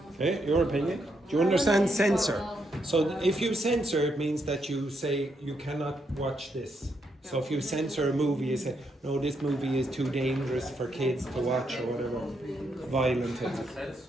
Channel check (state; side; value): normal; both; correlation 0.79